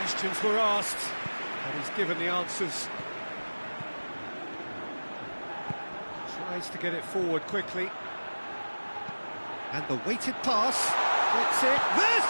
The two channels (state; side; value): inverted; both; correlation -1.00